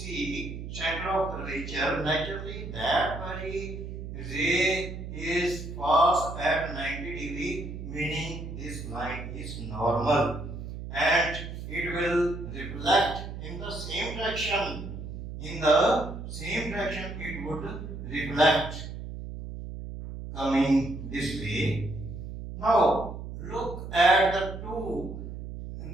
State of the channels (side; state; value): right; noise; hum, 8 dB below the sound